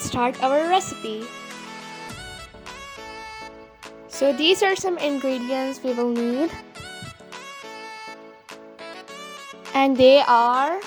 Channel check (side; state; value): both; identical; correlation 1.00